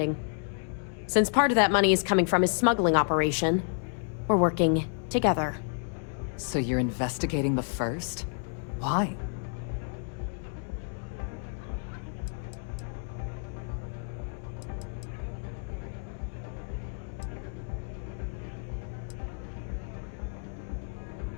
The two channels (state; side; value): silent; right; 56 dB below the other